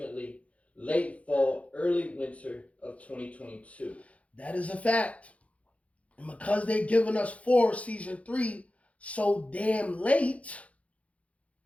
late fall, early winter of 2022. That is a fact. And because they've given us Season 3 so damn late,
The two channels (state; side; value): late; right; 0.065 ms